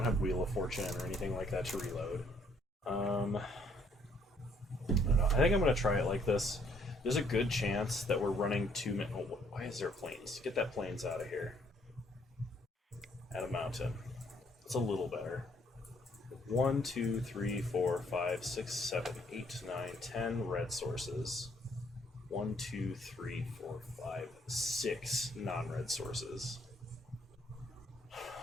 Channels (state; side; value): normal; both; correlation 0.66